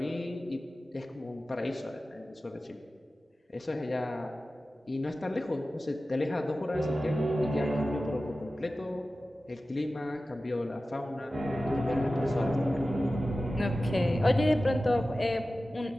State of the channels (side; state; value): both; normal; correlation 0.95